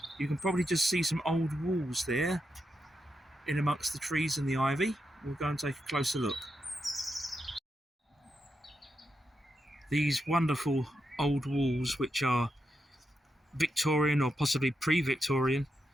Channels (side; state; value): both; normal; correlation 0.85